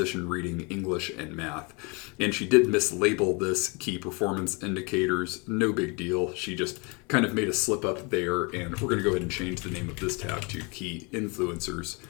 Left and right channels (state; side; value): quieter; right; 30.1 dB